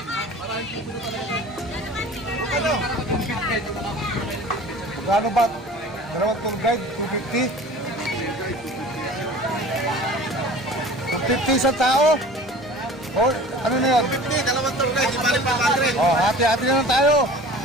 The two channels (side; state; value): both; normal; correlation 0.42